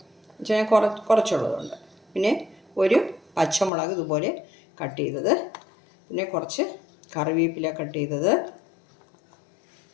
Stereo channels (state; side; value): drops out; right; at 3.7 s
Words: പക്ഷേ ഞാൻ കുറച്ചുള്ളതുകൊണ്ട്. പിന്നെ ഒരു പച്ചമുളക് ഇതുപോലെ കട്ട് ചെയ്തത്, പിന്നെ കുറച്ച് കറിവേപ്പില കട്ട് ചെയ്തത്,